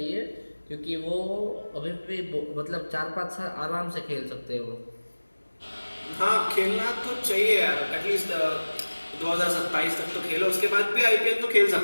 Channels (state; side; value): inverted; both; correlation -1.00